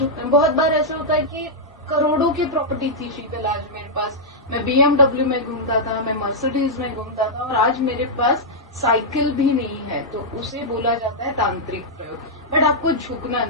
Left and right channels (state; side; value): normal; both; correlation -0.07